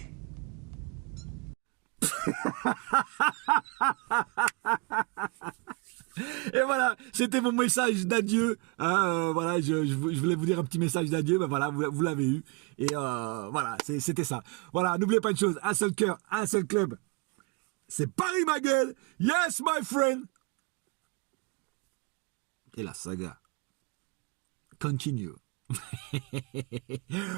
Et voilà, c'était mon message d'adieu. Voilà, je voulais vous dire un petit message d'adieu. Ben voilà, vous l'avez eu. Et voilà, c'était ça. Voilà, n'oubliez pas une chose, un seul cœur, un seul club. C'est Paris, ma gueule. Yes, my friend. Et la saga continue.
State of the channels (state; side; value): quieter; left; 29.6 dB